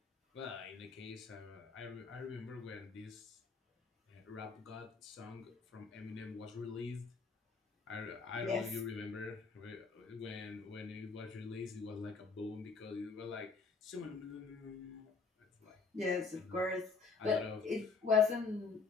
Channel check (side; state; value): right; quieter; 4.6 dB